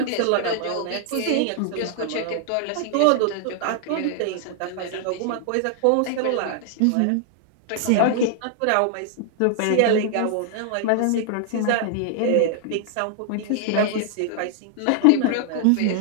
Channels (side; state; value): both; different; correlation 0.00